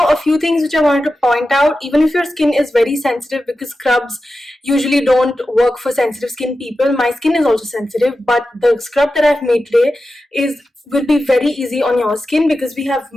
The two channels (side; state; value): both; normal; correlation 0.92